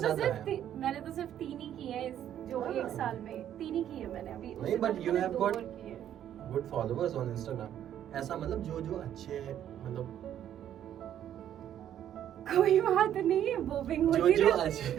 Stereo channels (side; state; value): left; quieter; 10.6 dB